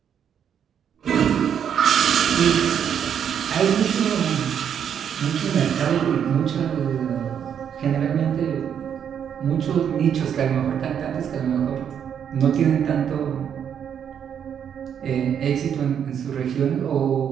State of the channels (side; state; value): left; quieter; 8.4 dB